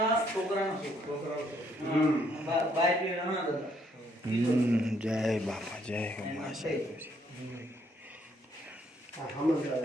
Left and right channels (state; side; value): normal; both; correlation 0.70